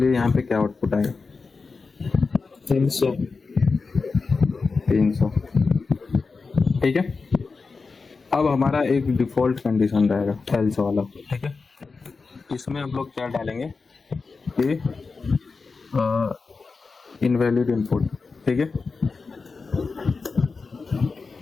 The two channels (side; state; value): right; quieter; 4.4 dB